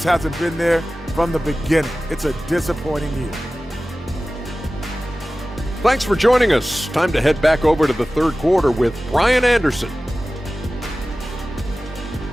hasn't been there from the beginning. It's a disappointing year. Thanks for joining us. Time to head back over to the third quarter with Brian Anderson.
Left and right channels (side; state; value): both; normal; correlation 0.96